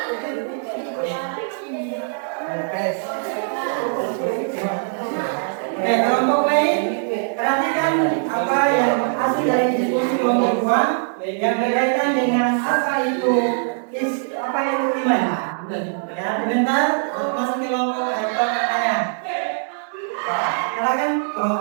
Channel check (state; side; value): silent; left; digital silence